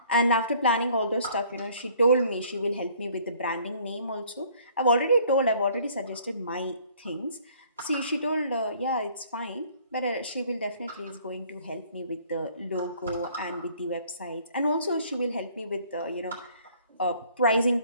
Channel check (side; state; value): both; inverted; correlation -0.57